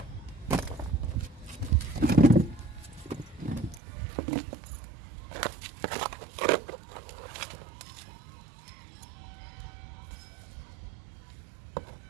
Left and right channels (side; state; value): left; drops out; at 3.8 s